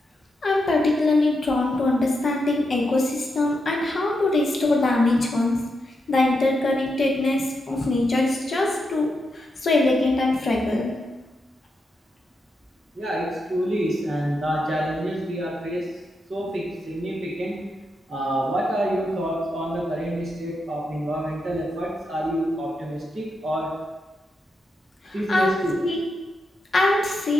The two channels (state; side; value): normal; both; correlation 0.84